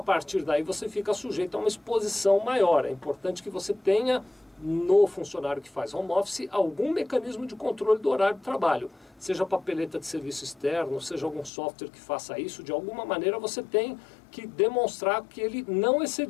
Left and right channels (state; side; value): drops out; right; at 11.5 s